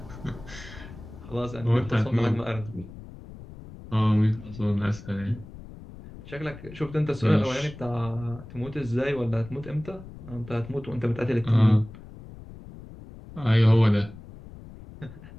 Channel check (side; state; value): left; noise; rumble, 16 dB below the sound